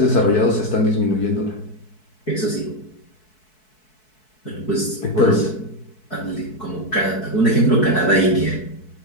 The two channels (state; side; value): late; right; 4.6 ms